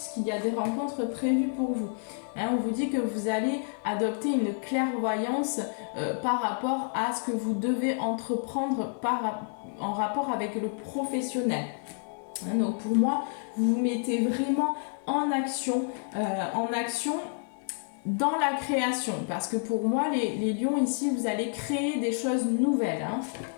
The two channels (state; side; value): silent; right; 58 dB below the other